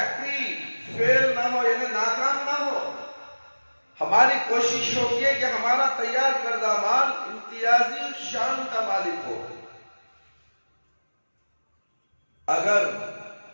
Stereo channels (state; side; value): inverted; both; correlation -1.00